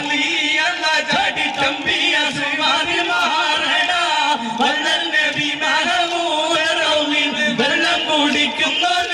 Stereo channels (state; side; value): identical; both; correlation 1.00